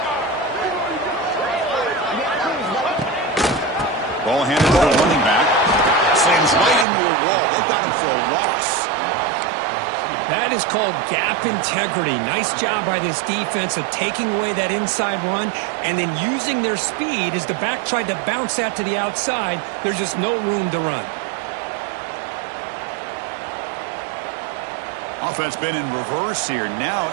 Ball handed to the running back. Slams right into a wall. They got him for a loss. That is called gap integrity. Nice job by this defense of taking away that inside run and then using their speed as the back tried to bounce that to the outside. There's just no room to run. Offense been in reverse here. Now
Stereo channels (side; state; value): left; drops out; at 6.9 s